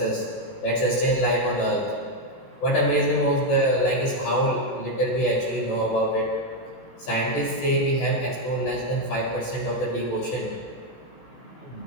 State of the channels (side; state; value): right; late; 18 ms